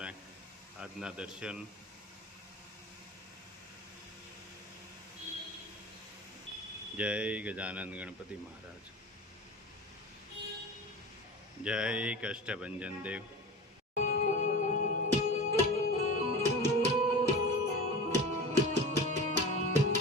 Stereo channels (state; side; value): normal; both; correlation 0.32